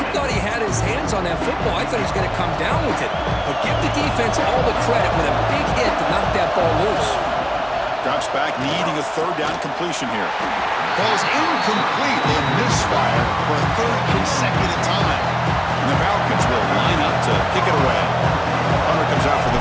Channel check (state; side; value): identical; both; correlation 1.00